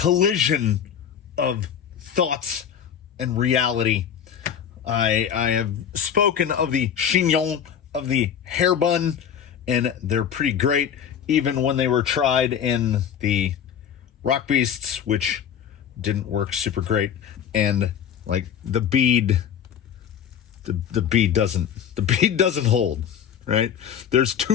of thoughts and reality. I have spoken of the chignon, of the hairbun, and they're pretty great, even when they were tried in the rock beasts, which didn't work super great. And like the bead, the bead doesn't hold. Right? There's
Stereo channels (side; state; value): right; quieter; 8.6 dB